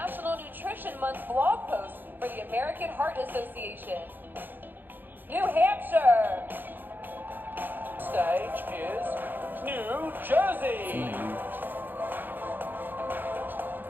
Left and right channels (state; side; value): late; left; 0.091 ms